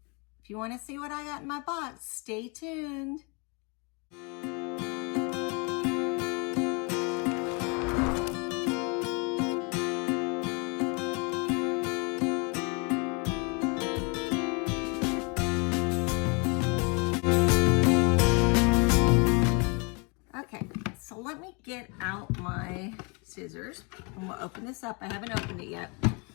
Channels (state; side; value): quieter; right; 32.1 dB